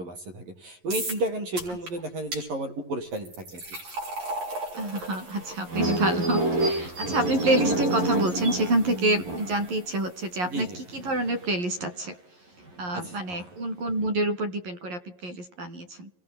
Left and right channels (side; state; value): left; late; 11 ms